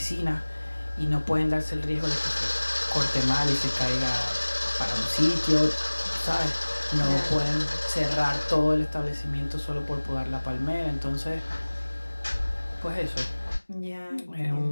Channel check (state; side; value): inverted; both; correlation -1.00